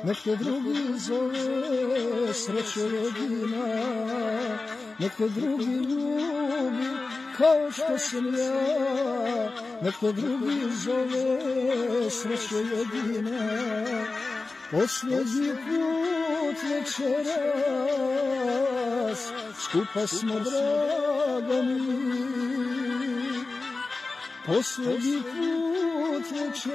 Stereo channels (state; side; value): quieter; right; 3.6 dB